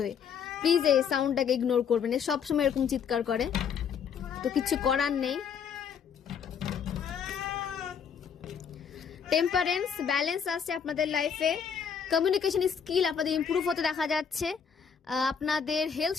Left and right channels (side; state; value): right; quieter; 7.1 dB